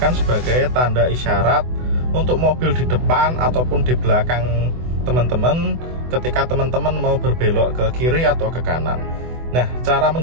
sebagai tanda isyarat untuk mobil di depan ataupun di belakang teman-teman ketika teman-teman mau berbelok ke kiri atau ke kanan. Nah, cara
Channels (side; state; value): left; late; 24 ms